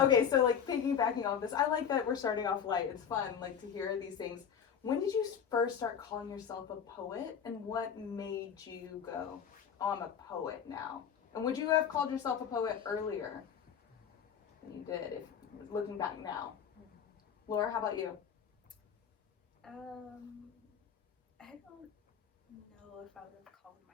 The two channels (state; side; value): quieter; right; 7.8 dB